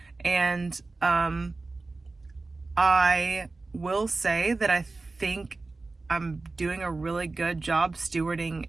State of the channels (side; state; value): left; quieter; 3.5 dB